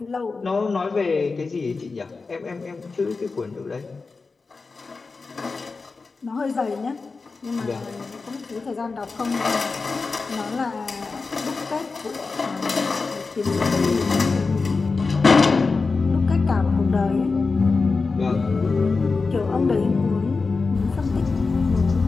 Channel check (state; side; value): quieter; right; 4.2 dB